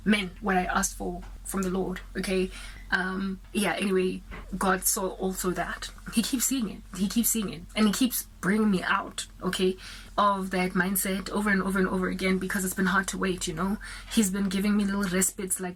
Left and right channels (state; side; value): identical; both; correlation 1.00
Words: men, what I asked for from the Lord. Okay. Anyway, God saw also that. He keeps seeing it and he keeps bringing me out, okay, of that mindset over and over and over again, because it's been hard to wait. He's been giving me little respites, like